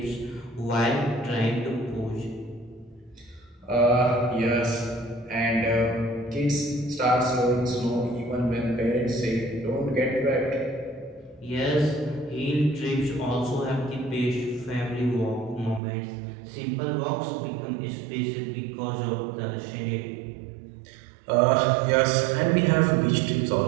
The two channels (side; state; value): left; drops out; at 15.8 s